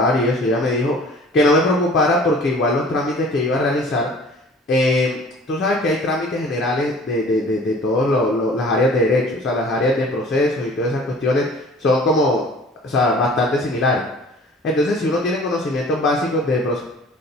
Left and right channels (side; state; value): both; normal; correlation 0.48